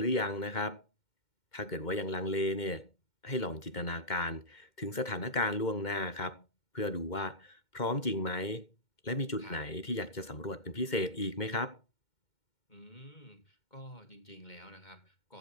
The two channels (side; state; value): right; late; 2.1 ms